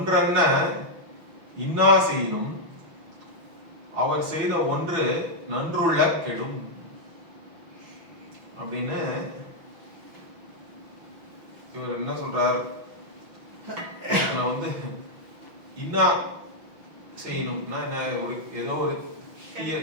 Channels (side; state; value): left; late; 6.1 ms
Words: இன்னா செய்யணும் அவர் செய்த ஒன்று நன்றுள்ள கெடும் அப்படின்னு இவர் என்ன சொல்றார். வந்து இன்னா செய்யணும்னா என்ன, ஒரு ஏதோ ஒரு